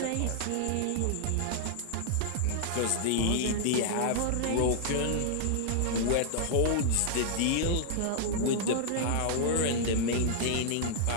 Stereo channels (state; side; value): different; both; correlation -0.01